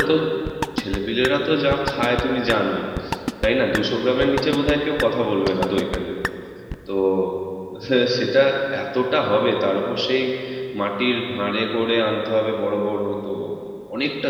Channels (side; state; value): both; identical; correlation 1.00